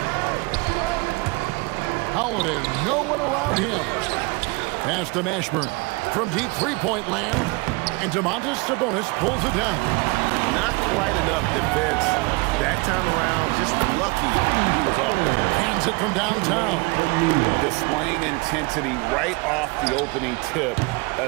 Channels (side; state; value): left; quieter; 27.0 dB